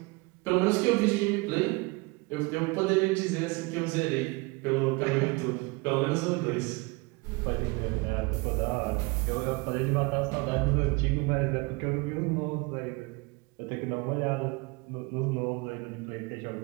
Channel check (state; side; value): quieter; left; 26.4 dB